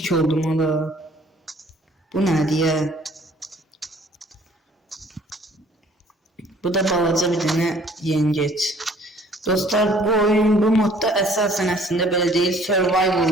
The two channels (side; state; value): both; normal; correlation 0.56